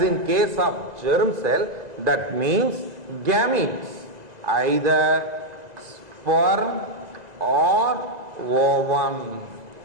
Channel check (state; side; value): late; left; 2.0 ms